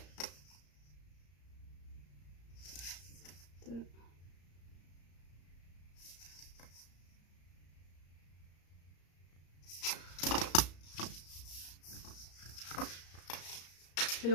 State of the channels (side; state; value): right; late; 34 ms